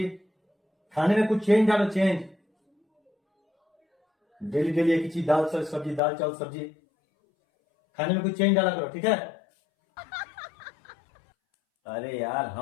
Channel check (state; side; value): drops out; right; at 6.0 s